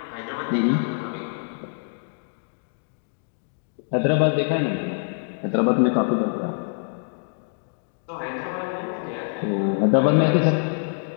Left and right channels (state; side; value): silent; right; 62 dB below the other